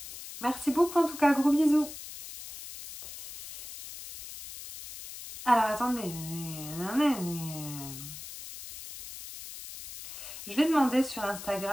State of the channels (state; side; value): noise; left; hiss, 12 dB below the sound